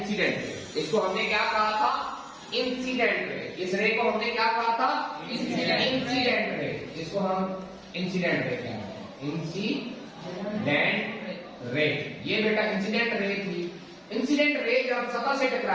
रे। इसको हमने क्या कहा था? Incident ray. इस रे को हमने क्या कहा था? Incident ray. इसको हम इंसिडेंट रे कहते हैं, इंसिडेंट रे। ये बेटा इंसिडेंट रे थी। इंसिडेंट रे जब सतह से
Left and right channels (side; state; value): both; identical; correlation 1.00